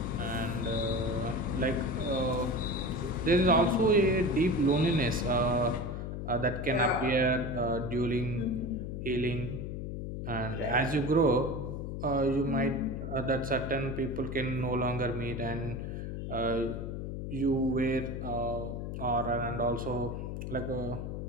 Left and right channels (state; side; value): noise; left; hum, 5 dB below the sound